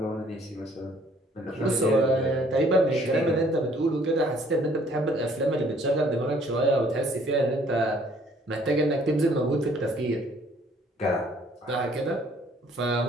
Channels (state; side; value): normal; both; correlation 0.60